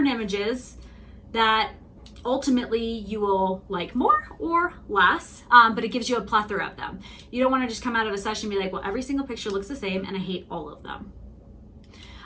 images that ultimately you will like more or less, but it gives you a plethora of them. You don't want to just come out of a session and be like, well, every single picture looks the same and I hate all of them.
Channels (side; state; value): both; identical; correlation 1.00